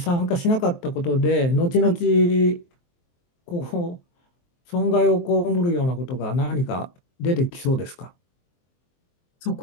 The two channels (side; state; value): right; late; 23 ms